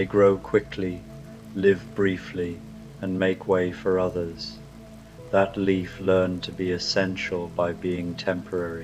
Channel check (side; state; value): both; identical; correlation 1.00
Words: grow quickly, live briefly, and make way for others. That leaf learned to be essential by being